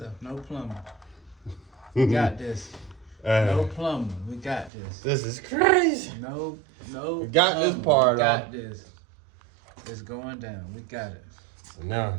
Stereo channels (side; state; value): left; drops out; at 4.7 s